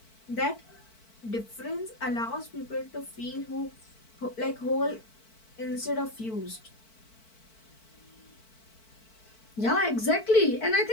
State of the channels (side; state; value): right; late; 4.5 ms